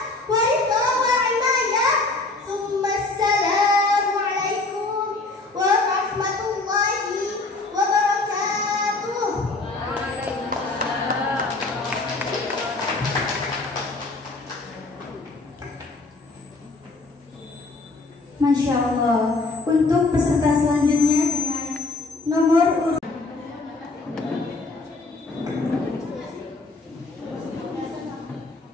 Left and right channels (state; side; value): quieter; right; 3.4 dB